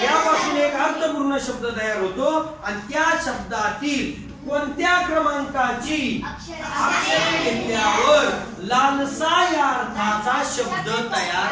यापासून एक अर्थपूर्ण शब्द तयार होतो आणि त्या शब्दातील कोणत्या क्रमांकाची अक्षरे घेतल्यावर लालसा या अर्थाचा शब्द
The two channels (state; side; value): identical; both; correlation 1.00